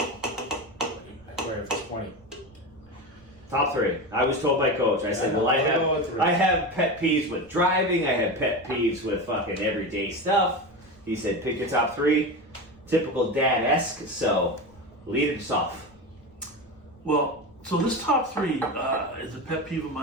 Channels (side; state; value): right; noise; rumble, 28 dB below the sound